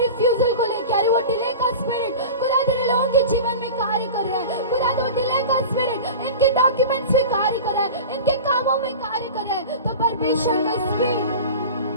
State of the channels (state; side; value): inverted; both; correlation -0.33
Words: रिफ्यूजल को लेके आ रही, वो डिले का स्पिरिट खुदा तेरे लोगों के जीवन में कार्य कर रहा है। खुदा वो डिले का स्पिरिट इनके डॉक्यूमेंट्स में कार्य कर रहा है, इनके कामों में कार्य कर रहा है। तो परमेश्वर का